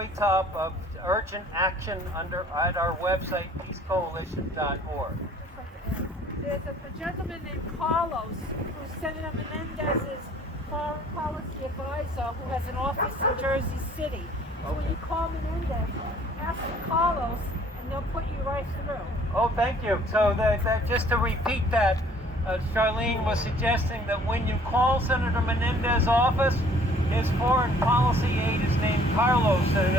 top of urgent action at our website, peacecoalition.org. There's a gentleman named Carlos who's Senator Menendez's foreign policy advisor who has an office in Jersey City. So when you call Menendez, ask Carlos and they'll put you right through. Oh, thank you. So just to repeat that, Charlene was suggesting that when you call Senator Menendez's office, his foreign policy aide is named Carlos, and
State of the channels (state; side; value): normal; both; correlation 0.56